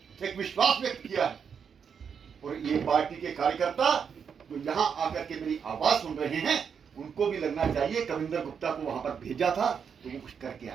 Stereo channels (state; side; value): quieter; left; 6.9 dB